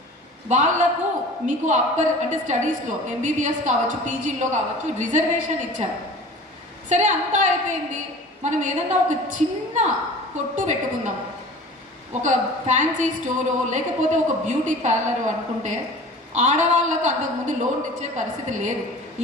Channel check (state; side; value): normal; both; correlation 0.41